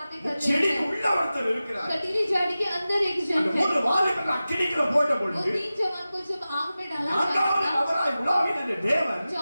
कर रहे செடி हैं, உள்ள ஒருத்தர் இருக்கிறார். कटीली झाड़ी के अंदर एक जन அந்த है, மூணு வாலிபர்கள் அக்கினிக்குள்ள போட்ட वो பொழுது 3 जवान को जब आग में डाला நான்காவது जाता, அவராய் உலாவின அந்த தேவன்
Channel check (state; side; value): inverted; both; correlation -0.95